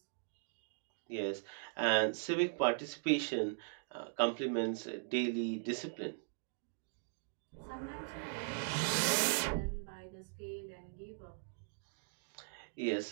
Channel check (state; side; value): silent; left; digital silence